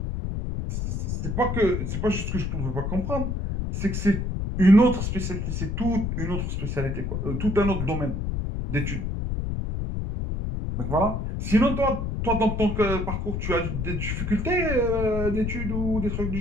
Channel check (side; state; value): left; noise; rumble, 2 dB below the sound